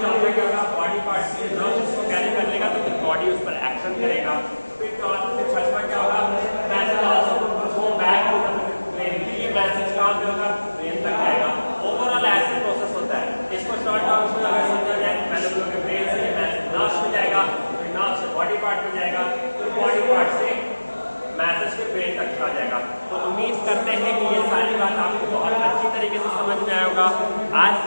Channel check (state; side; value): inverted; both; correlation -1.00